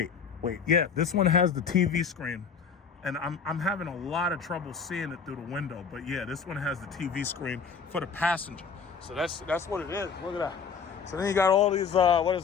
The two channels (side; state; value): right; quieter; 6.0 dB